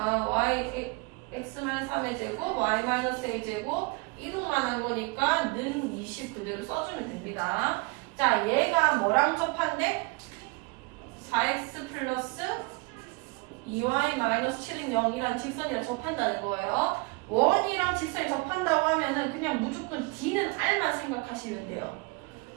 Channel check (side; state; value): left; quieter; 26.8 dB